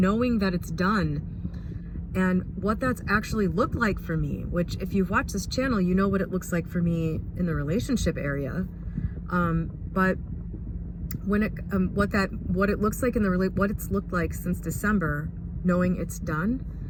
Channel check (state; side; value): identical; both; correlation 1.00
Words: that it's done and what that's actually looked like for me, which if you've watched this channel, you know what it looks like for me in the relationship area. But when what it looks like what it's looked like since December, knowing it's done,